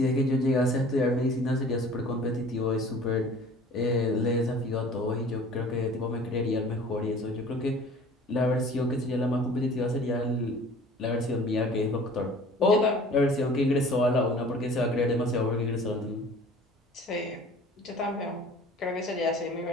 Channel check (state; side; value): normal; both; correlation 0.47